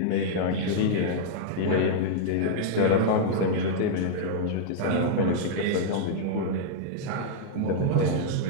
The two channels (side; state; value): both; different; correlation -0.01